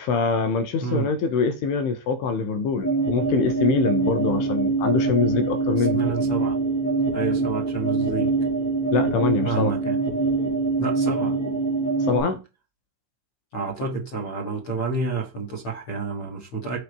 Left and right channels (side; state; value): right; late; 15 ms